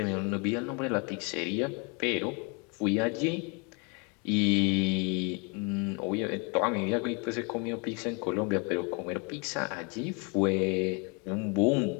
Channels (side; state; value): right; quieter; 33.3 dB